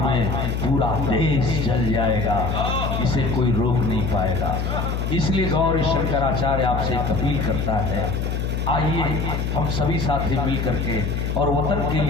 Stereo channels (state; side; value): noise; left; hum, 1 dB below the sound